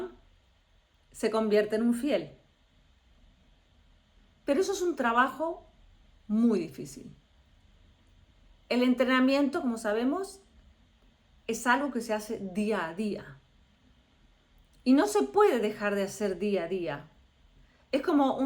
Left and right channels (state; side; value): identical; both; correlation 1.00